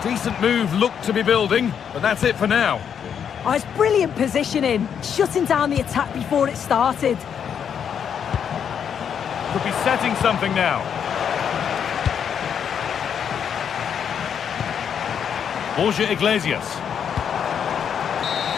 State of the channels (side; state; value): right; quieter; 8.0 dB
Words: Decent move looked to be building, but that's it for now. Oh, it's brilliant positioning, shutting down the attack before it started. Could be setting something now. Borja Iglesias.